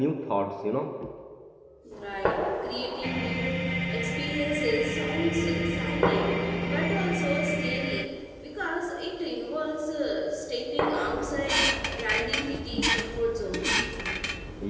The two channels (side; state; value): both; identical; correlation 1.00